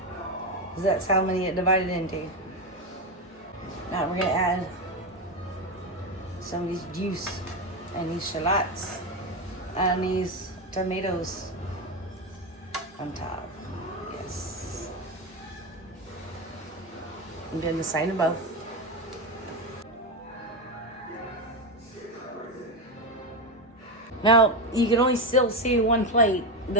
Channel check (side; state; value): both; normal; correlation 0.13